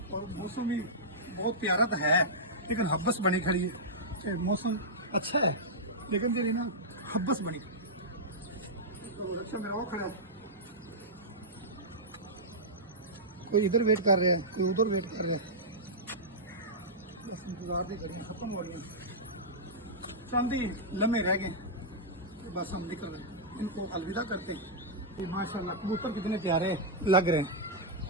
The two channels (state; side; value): normal; both; correlation -0.11